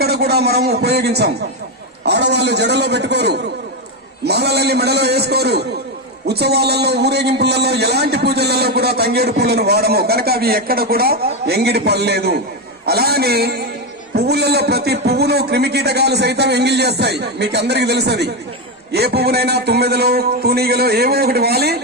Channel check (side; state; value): both; normal; correlation 0.10